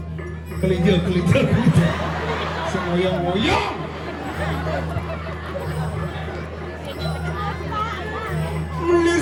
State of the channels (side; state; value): both; identical; correlation 1.00